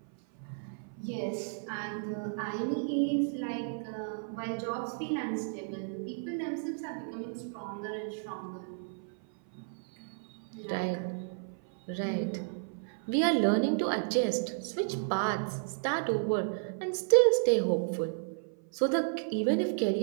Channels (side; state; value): left; silent; 56 dB below the other